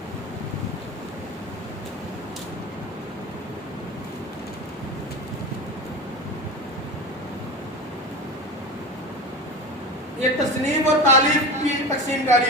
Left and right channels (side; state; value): both; normal; correlation 0.28